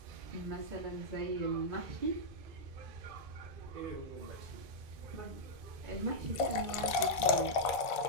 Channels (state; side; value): late; left; 1.5 ms